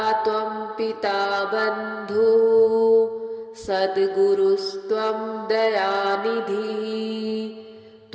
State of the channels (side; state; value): both; identical; correlation 1.00